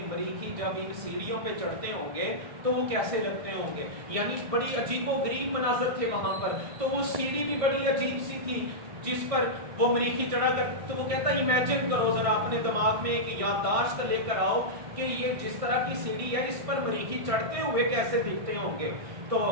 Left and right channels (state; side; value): late; left; 1.5 ms